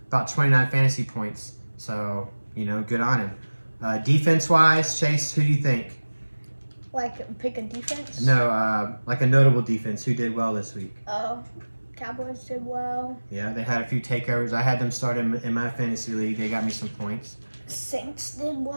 about 29 fantasy points. So. Good on him. Defense-wise, Chaize, who do you think? Like, pick a defense? No, like a notable defense. Who did well this week? Cowboys did well. Yeah, they had a few takeovers. I had them start in my fantasy league. They got me some points. Saints did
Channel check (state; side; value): inverted; both; correlation -1.00